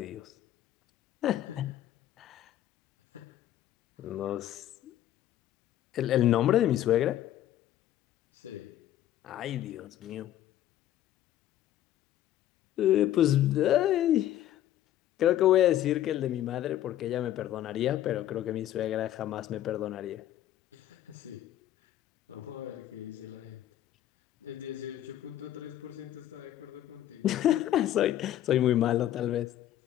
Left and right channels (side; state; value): right; quieter; 12.5 dB